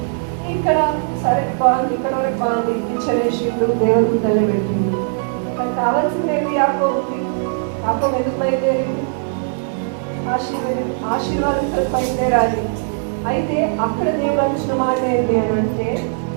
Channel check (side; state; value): left; silent; digital silence